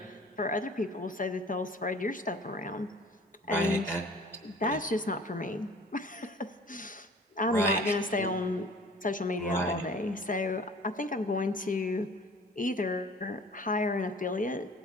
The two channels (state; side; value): normal; both; correlation 0.47